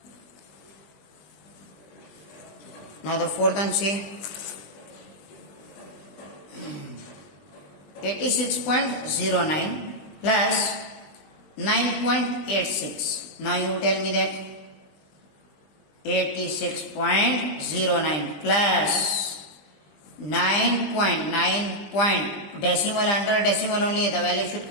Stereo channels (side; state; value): right; late; 20 ms